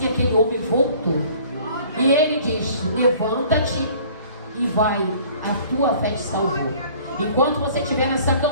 aquele homem voltou. E ele diz: levanta-te e vai, a tua fé te salvou. Enquanto você estiver nessa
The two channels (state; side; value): inverted; both; correlation -0.52